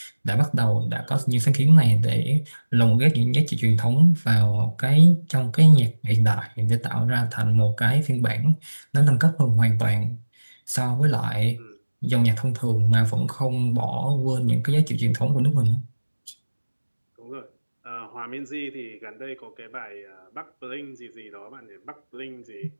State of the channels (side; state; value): both; inverted; correlation -1.00